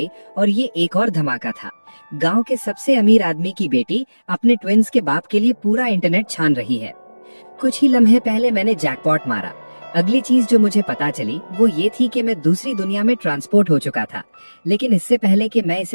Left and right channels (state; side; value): inverted; both; correlation -1.00